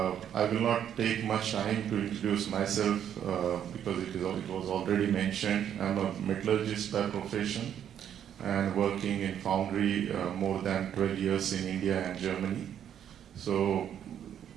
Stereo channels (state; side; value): quieter; left; 9.6 dB